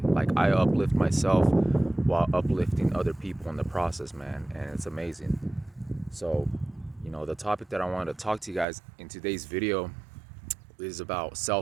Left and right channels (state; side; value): drops out; left; at 8.7 s